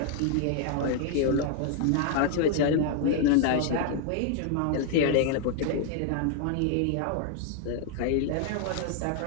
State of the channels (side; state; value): both; different; correlation 0.00